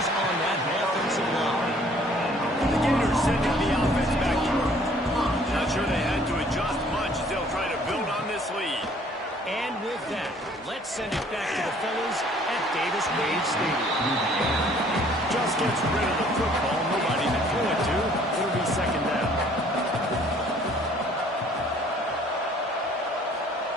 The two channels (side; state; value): both; normal; correlation 0.58